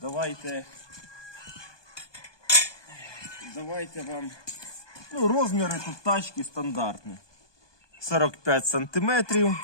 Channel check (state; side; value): late; right; 1.2 ms